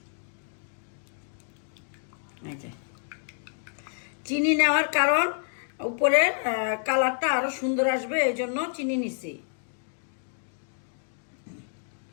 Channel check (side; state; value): right; silent; 59 dB below the other